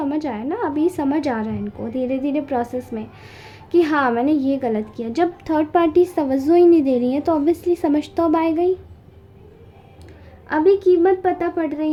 आया ना, अभी समझ आ रहा है इनको धीरे धीरे प्रोसेस में कि हाँ मैंने ये गलत किया। जब थर्ड पार्टी तवज्जो ही नहीं दे रही है तो ऑब्वियसली समझ तो अब आएगा ही। अभी कीमत पता पड़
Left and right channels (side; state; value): both; identical; correlation 1.00